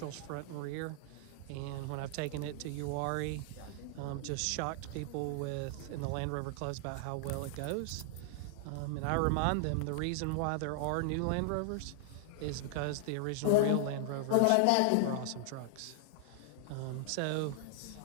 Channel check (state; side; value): different; both; correlation 0.00